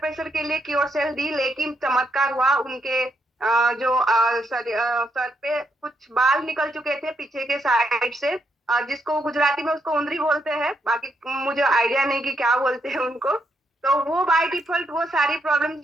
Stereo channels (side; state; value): both; normal; correlation 0.78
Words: प्रेशर के लिए क्योर सेल दी, लेकिन चमत्कार हुआ। उनके जो सर पे कुछ बाल निकल चुके थे पीछे के साइड से, जिसको गुजराती में उसको उंदरी बोलते हैं, बाकी मुझे आइडिया नहीं कि क्या बोलते हैं उनको। तो वो बाय डिफॉल्ट वो सारी प्रॉब्लम